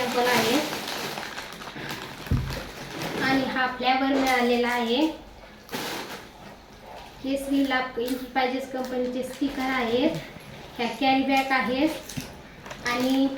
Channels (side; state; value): both; identical; correlation 1.00